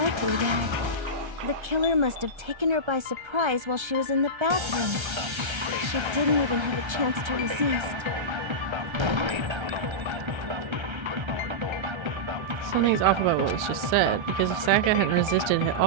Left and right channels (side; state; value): left; late; 1.3 ms